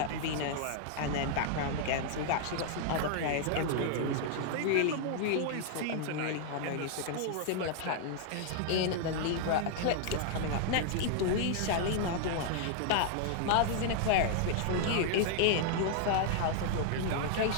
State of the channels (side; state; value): both; different; correlation -0.01